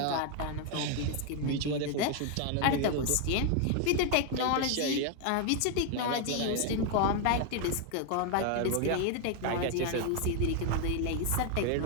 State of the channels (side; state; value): both; different; correlation 0.01